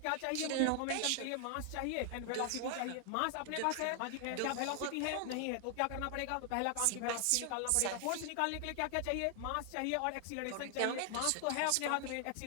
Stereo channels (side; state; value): both; different; correlation 0.00